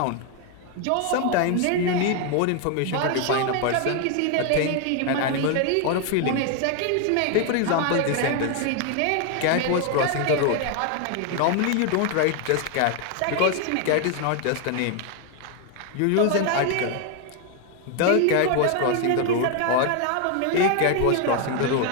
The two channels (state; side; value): different; both; correlation 0.01